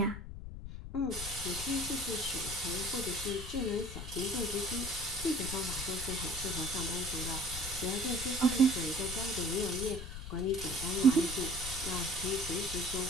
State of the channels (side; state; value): left; noise; rumble, 9 dB below the sound